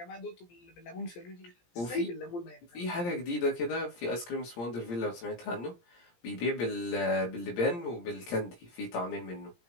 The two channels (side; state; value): right; late; 17 ms